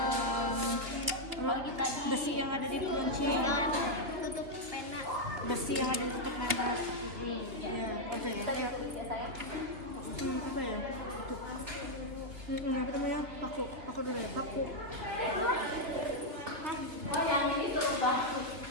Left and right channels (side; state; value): left; late; 2.7 ms